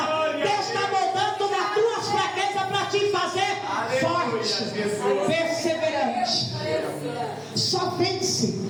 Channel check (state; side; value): identical; both; correlation 1.00